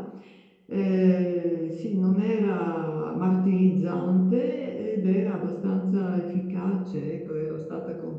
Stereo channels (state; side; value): identical; both; correlation 1.00